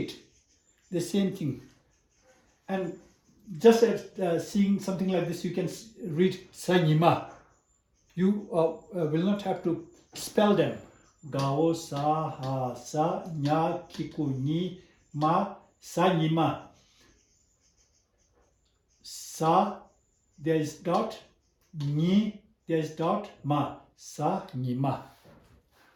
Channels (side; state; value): both; identical; correlation 1.00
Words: the same thing. And just as seeing something like this, you can read Sanyima. You will not have to spell them. Gao, sa, ha, sa, nya, kiku, ni, ma, Sanyima. Sa, there is dot, ni, there is dot, ma, sa, ni, ma.